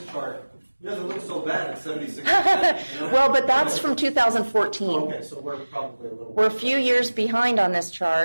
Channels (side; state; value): both; inverted; correlation -1.00